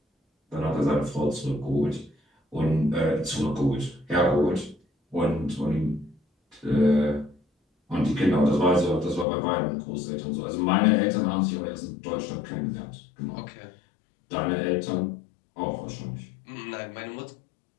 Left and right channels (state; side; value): drops out; right; at 9.2 s